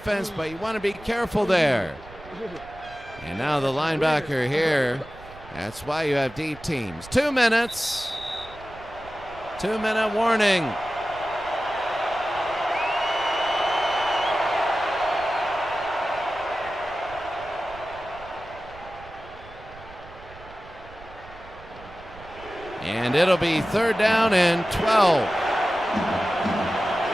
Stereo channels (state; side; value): noise; right; rumble, 19 dB below the sound